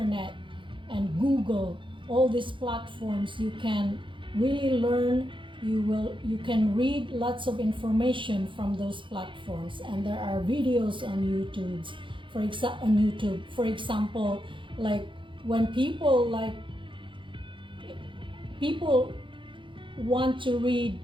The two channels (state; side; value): late; left; 0.24 ms